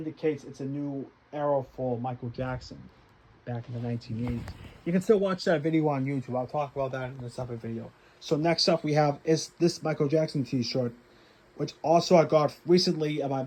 it's a new era for Michael Jackson back in the 1980s. You can still watch that video on YouTube. I'll talk about that in a separate video. So next up we have is this Michael Jackson t-shirt, which also I got recently at my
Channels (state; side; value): identical; both; correlation 1.00